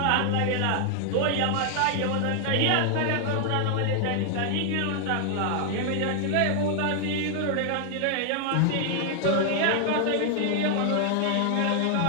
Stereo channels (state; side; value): different; both; correlation 0.00